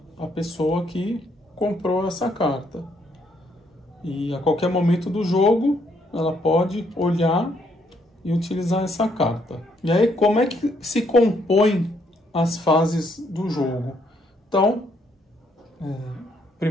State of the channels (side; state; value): both; normal; correlation 0.71